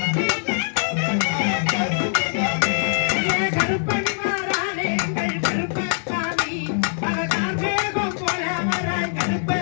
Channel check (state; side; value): silent; right; 64 dB below the other